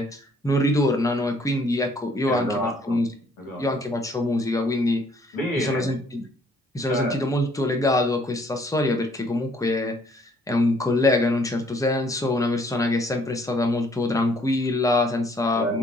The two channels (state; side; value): normal; both; correlation 0.63